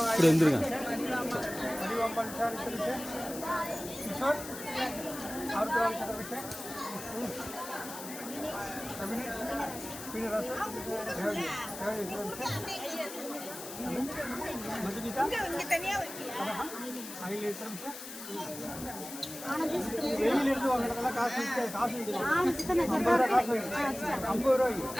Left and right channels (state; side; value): noise; left; hiss, 11 dB below the sound